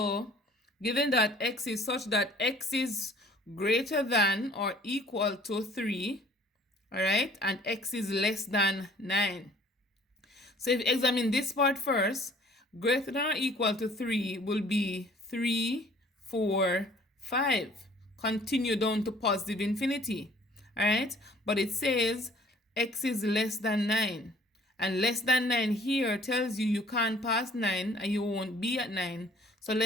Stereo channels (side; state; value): both; normal; correlation 0.54